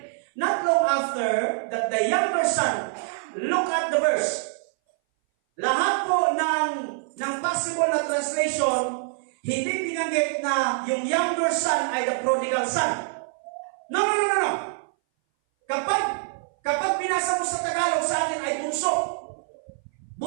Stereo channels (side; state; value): left; silent; 59 dB below the other